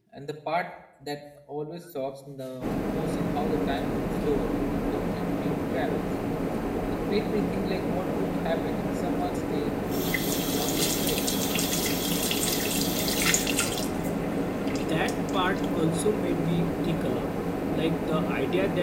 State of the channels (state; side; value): identical; both; correlation 1.00